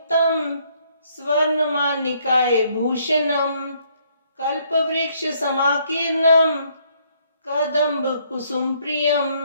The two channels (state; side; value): inverted; both; correlation -0.67